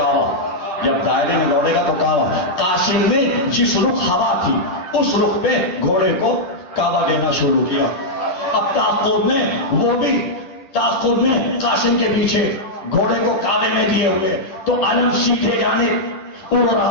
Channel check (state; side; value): late; right; 10 ms